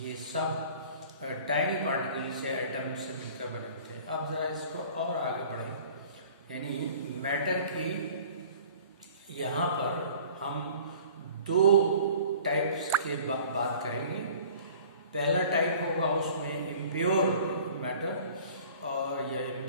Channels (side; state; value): both; inverted; correlation -0.48